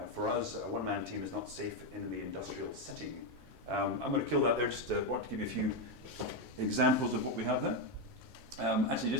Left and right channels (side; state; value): both; normal; correlation 0.07